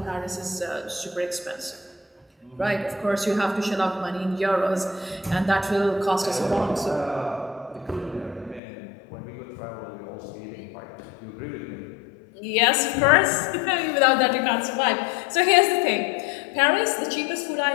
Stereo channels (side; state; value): right; drops out; at 8.6 s